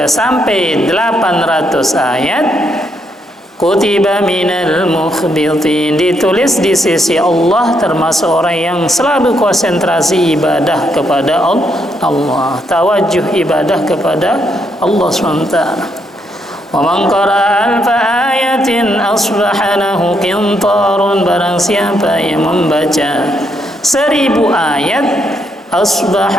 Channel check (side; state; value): both; normal; correlation 0.76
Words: sampai 800 ayat, kutiba minal mukhbitin, ditulis di sisi Allah termasuk orang yang selalu konsentrasi ibadah kepada Allah, tawajuh ibadah kepada Allah SWT. Wa man qara'a alfa ayatin asbaha lahu qintarun, barang siapa yang membaca 1000 ayat,